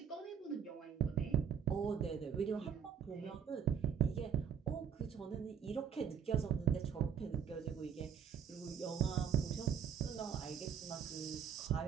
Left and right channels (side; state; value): left; quieter; 8.0 dB